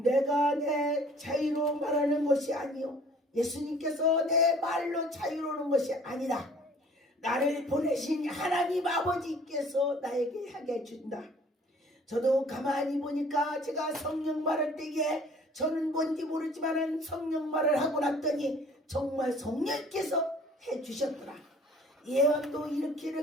내 자유로 말하는 것이 아니요, 예수님께서 내 말로 자유로운 것이 아니라 나를 보내신 하나님 아버지께서 나에게 하게 준다. 저도 가만히 보니까 제가 성령 말할 때에 저는 뭔지 모르지만 성령 말을 하고 났더니 정말 성령께서 해주셨더라. 예언도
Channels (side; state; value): both; normal; correlation 0.53